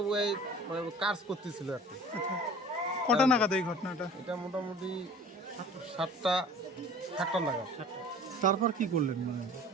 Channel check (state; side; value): normal; both; correlation 0.45